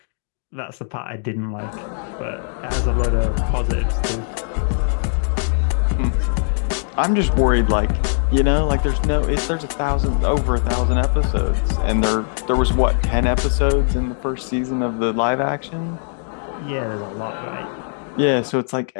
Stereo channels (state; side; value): silent; right; digital silence